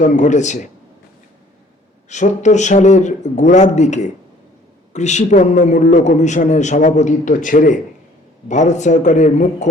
ঘটেছে। 70 সালের গোড়ার দিকে কৃষিপণ্য মূল্য কমিশনের সভাপতিত্ব ছেড়ে ভারত সরকারের মুখ্য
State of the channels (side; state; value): both; normal; correlation 0.56